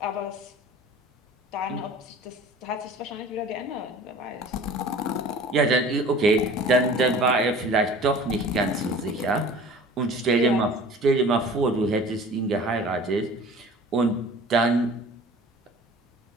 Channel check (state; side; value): normal; both; correlation 0.44